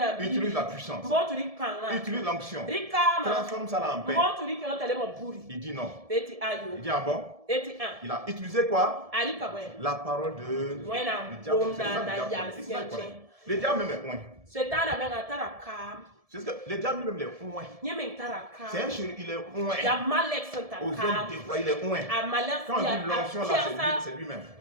Utilise la puissance. Utilise l'onction. Transforme ça là en paix. Il dit non. Il dit ah bon? Il a utilisé quoi? La parole de diable. Le diable même est loin. C'est ce que le diable lui-même est loin. C'est un chéri, il est loin. Aux yeux déployés, il est loin. Quand on dit l'onction là, c'est lui-même.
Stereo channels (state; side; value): late; left; 1.7 ms